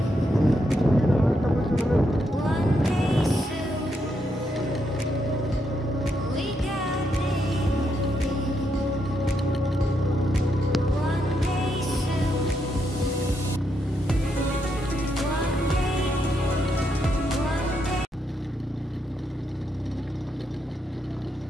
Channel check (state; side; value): normal; both; correlation 0.80